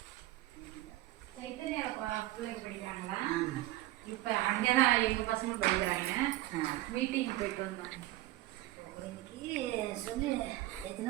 இப்போ அங்கே தான் எங்கள் பசங்க படிக்கிறாங்க. மீட்டிங் போயிட்டு வந்தோம். இன்னைக்கு சொல்லி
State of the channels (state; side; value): quieter; left; 16.5 dB